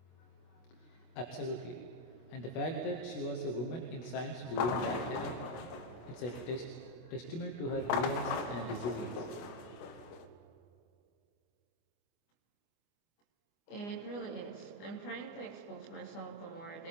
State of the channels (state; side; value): late; right; 24 ms